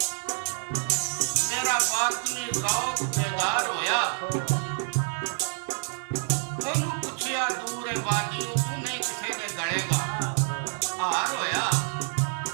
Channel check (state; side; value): silent; left; 60 dB below the other